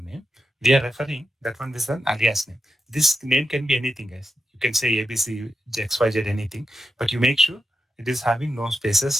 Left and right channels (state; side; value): normal; both; correlation 0.88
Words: name. We are referring that one is an alias name. This name can be anything, guys. You can say ABC, XYZ, anything, but you make sure it is having no